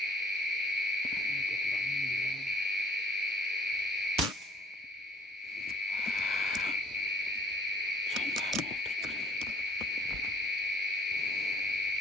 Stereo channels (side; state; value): both; normal; correlation 0.55